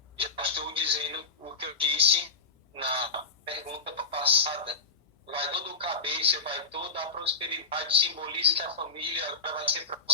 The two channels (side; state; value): right; quieter; 4.1 dB